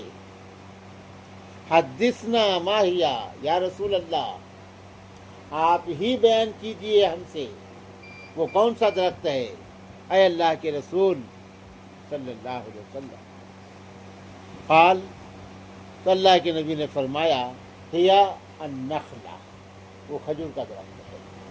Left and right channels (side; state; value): both; identical; correlation 1.00